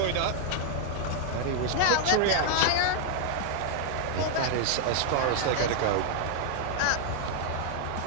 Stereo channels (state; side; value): different; both; correlation -0.01